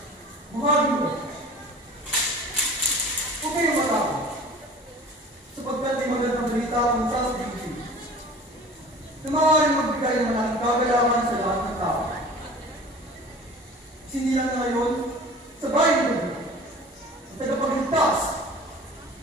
Mga amigo, huwag kayong matakot, sapagkat may magandang balita ang sasabihin na maaaring magbigay ng malaking kagalakan sa lahat ng tao. Sinilang na ngayon sa bayan ng Diyos, sa tagapagligtas,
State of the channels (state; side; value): normal; both; correlation 0.42